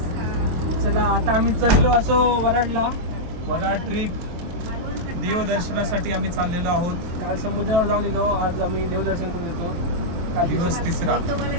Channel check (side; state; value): left; late; 23 ms